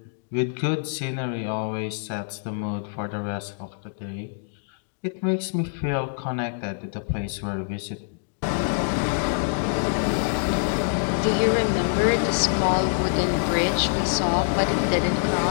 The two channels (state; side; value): silent; right; digital silence